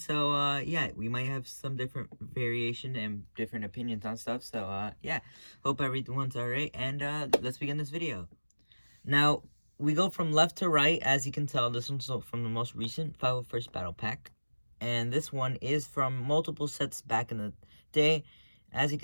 yeah, we might have some different variation and different opinions on stuff, so yeah, hope everyone's alright, and let's begin this video. Now, we go from left to right. As you can tell, this one's from the most recent 501st Battle Pack. And this one is from multiple sets back in the day. As you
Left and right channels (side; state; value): both; inverted; correlation -1.00